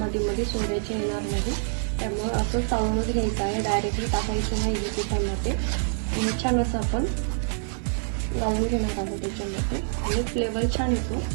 मध्ये सोडायचे येणार नाही। त्यामुळे असं चाळूनच घ्यायचं आहे, डायरेक्टली टाकायचं नाही पिठामध्ये। छान असं आपण लावून घेणार आहोत त्याच्यामध्ये आणि फ्लेवर छान येतो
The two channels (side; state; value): left; silent; digital silence